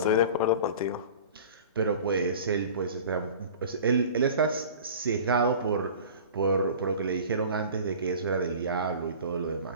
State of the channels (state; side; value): inverted; both; correlation -0.40